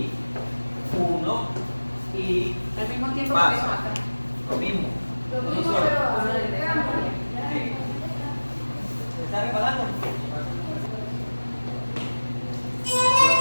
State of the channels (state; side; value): inverted; both; correlation -1.00